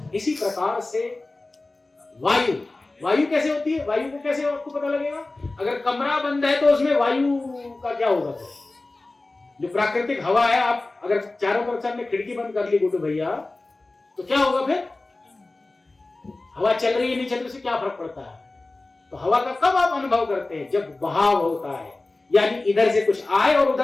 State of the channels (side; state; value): right; quieter; 3.1 dB